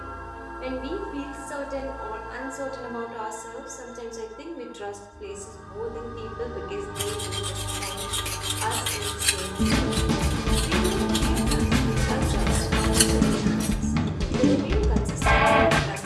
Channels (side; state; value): both; identical; correlation 1.00